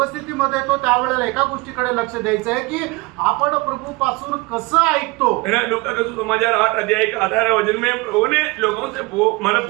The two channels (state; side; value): quieter; left; 24.4 dB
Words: येतो त्यावेळेला एका गोष्टीकडे लक्ष द्यायचं आहे की आपण प्रभू पासून कसं ऐकतो. लूका का सुसमाचार 8 अध्याय का 18 वचन में प्रभु ने लोगों से मला